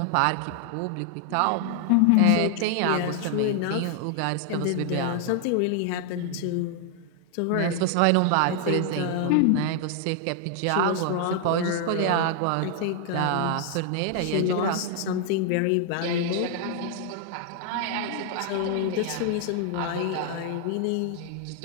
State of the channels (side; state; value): both; different; correlation 0.00